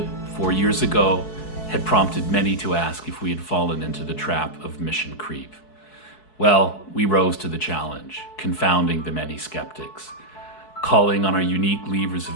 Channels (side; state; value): right; late; 4.7 ms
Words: 4 years ago, had prompted many to ask if we had fallen into the trap of mission creep. Well, we rose to the challenge, confounding the many skeptics. Calling on our unique levers